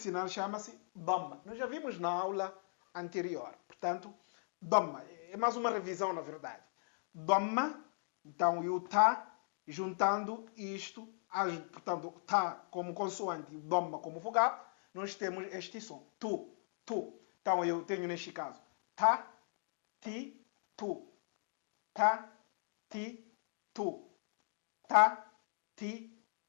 chama-se Dhamma. Nós já vimos na aula anterior. Portanto, Dhamma. É mais uma revisão, na verdade. Dhamma, então, e o Ta, juntando isto, portanto, Ta como consoante e Dhamma como vogal, nós temos este som. Tu, tu. Então, eu tenho neste caso Ta, Ti, Tu. Ta, Ti, Tu. Ta, ti,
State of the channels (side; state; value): right; silent; digital silence